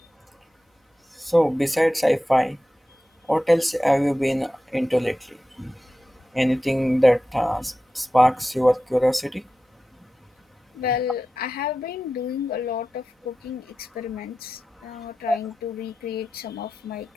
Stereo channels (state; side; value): normal; both; correlation 0.93